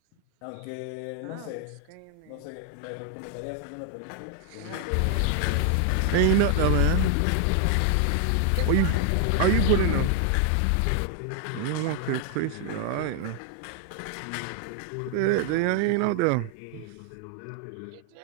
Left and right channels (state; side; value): different; both; correlation 0.00